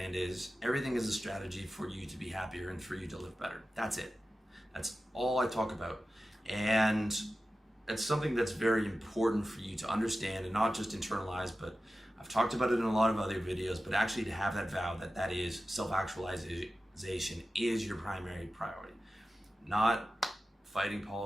is. Everything is a strategy for you to be happier and for you to live better. That's it. That's all I talk about. And it's something that's very important for you to understand and not just internalize, but I've talked about it in a lot of other videos, but actually to have that vow that is self-actualization is your primary priority. Not fighting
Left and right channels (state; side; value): normal; both; correlation 0.94